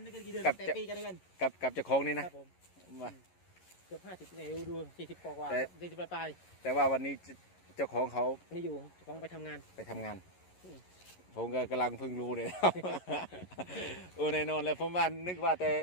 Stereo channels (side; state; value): right; late; 11 ms